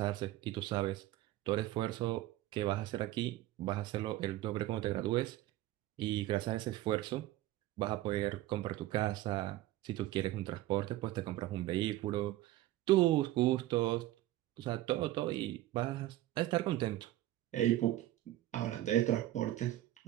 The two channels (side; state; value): left; quieter; 15.3 dB